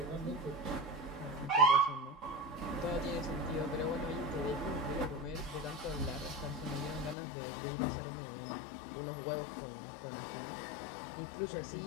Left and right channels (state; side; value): drops out; right; at 7.2 s